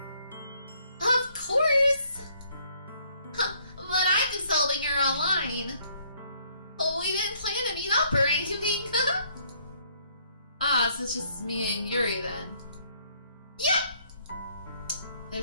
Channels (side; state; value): both; inverted; correlation -0.65